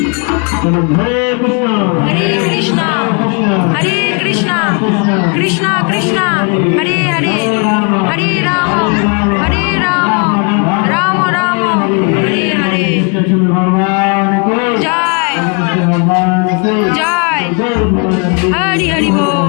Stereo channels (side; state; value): right; quieter; 35.5 dB